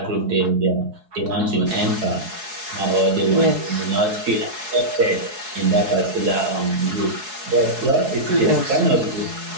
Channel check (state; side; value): late; left; 4.7 ms